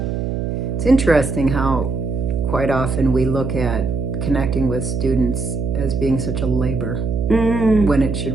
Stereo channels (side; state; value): right; noise; hum, 2 dB below the sound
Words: It's interesting how quite often we look at connecting with students as being such a labor when it